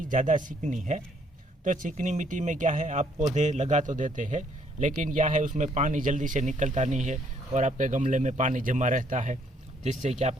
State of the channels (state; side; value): normal; both; correlation 0.67